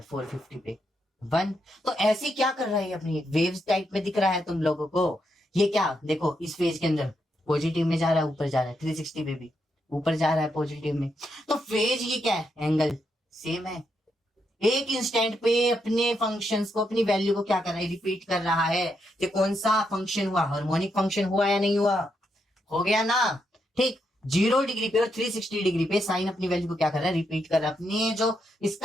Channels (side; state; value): both; normal; correlation 0.81